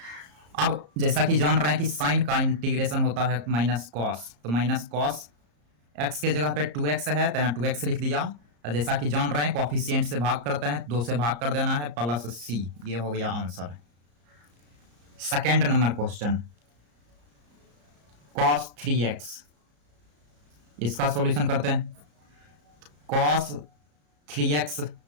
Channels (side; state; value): left; late; 34 ms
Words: अब जैसा कि जान रहे हैं कि साइन का इंटीग्रेशन होता है माइनस कॉस, तो माइनस कॉस एक्स के जगह पे 2x है तो यहाँ 2x लिख दिया। और जैसा कि जान रहे हैं कोफिशिएंट से भाग करते हैं, 2 से भाग कर देना है प्लस c, ये हो गया answer. Second number question, cos 3x, इसका सॉल्यूशन करते हैं। cos 3x